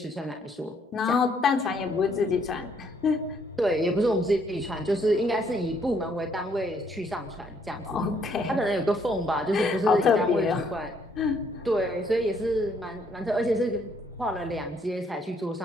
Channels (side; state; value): both; normal; correlation 0.68